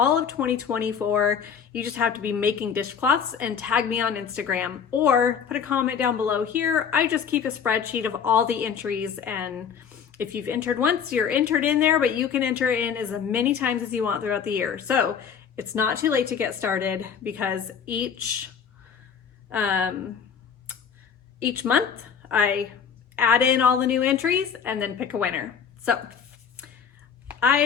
of 2024. You just have to be making dishcloths and tag me on Instagram or put a comment down below here. I just keep a spreadsheet of all the entries, and if you've entered once, you're entered in there, but you can enter in as many times as you want throughout the year. So it's not too late to get started because each month I add in all the new entries and then pick a winner. So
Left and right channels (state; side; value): quieter; right; 7.2 dB